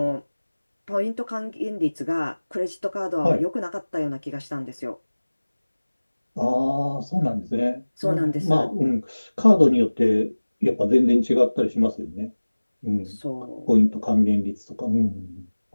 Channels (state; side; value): inverted; both; correlation -1.00